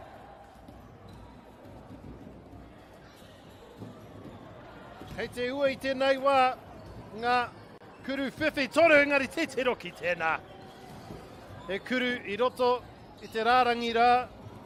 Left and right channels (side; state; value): both; identical; correlation 1.00